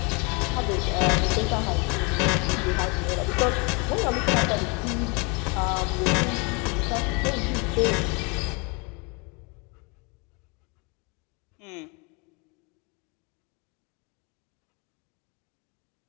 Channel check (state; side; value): quieter; right; 31.0 dB